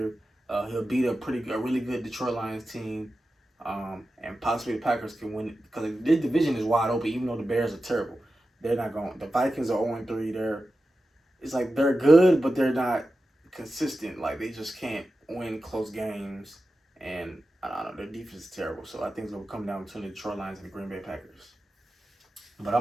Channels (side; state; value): both; normal; correlation 0.92